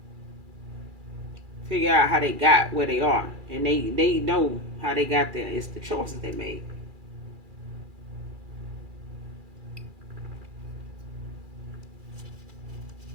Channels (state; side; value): late; left; 2.4 ms